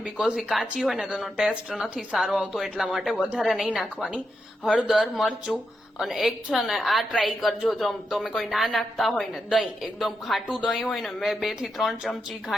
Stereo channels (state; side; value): normal; both; correlation 0.85